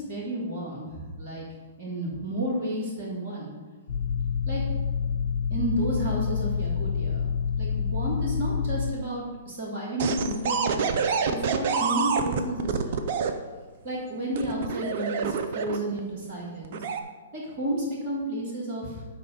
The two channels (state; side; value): inverted; both; correlation -0.45